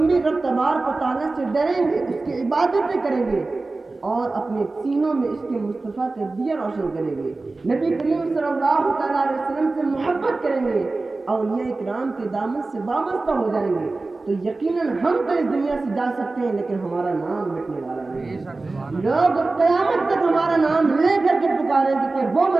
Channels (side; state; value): left; quieter; 3.4 dB